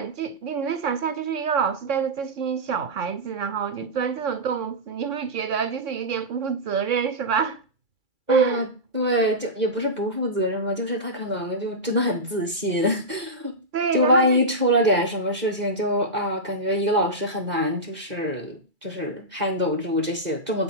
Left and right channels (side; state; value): left; late; 2.3 ms